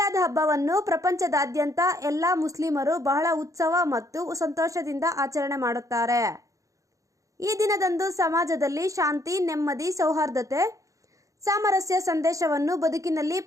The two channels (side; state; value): left; late; 0.16 ms